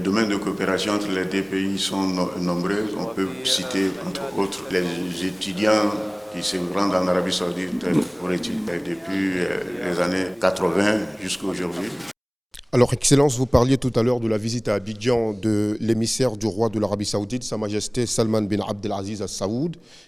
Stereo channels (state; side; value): identical; both; correlation 1.00